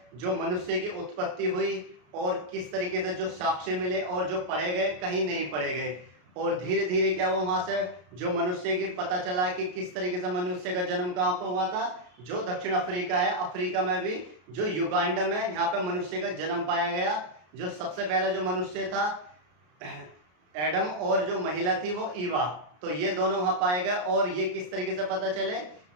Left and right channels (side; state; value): left; late; 33 ms